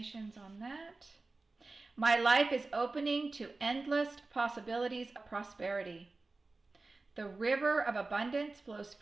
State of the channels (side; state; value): left; quieter; 3.4 dB